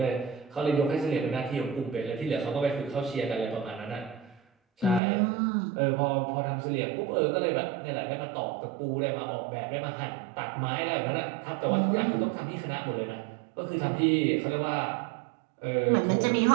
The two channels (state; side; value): drops out; left; at 5.0 s